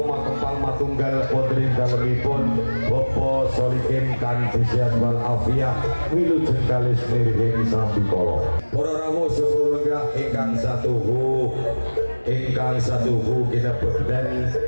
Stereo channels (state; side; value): inverted; both; correlation -1.00